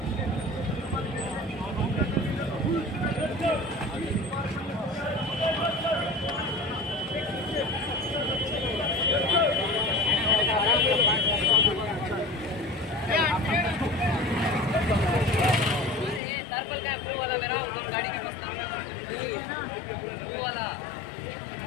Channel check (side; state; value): right; drops out; at 16.2 s